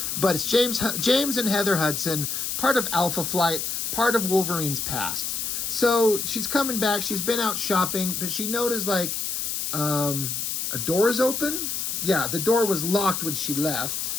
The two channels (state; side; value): noise; left; hiss, 2 dB below the sound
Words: But it's James and Heather Hudson, part of Alpha Flight, part of Wolverine's past. So she's coming back, she's been out shopping, but she noticed, like, a door is open. Yeah, the door was locked when she left.